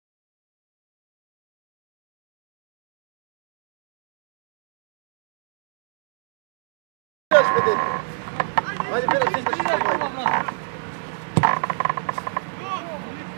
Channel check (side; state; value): left; silent; digital silence